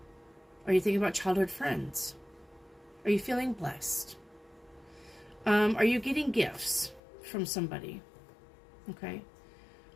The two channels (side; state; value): right; drops out; at 7.0 s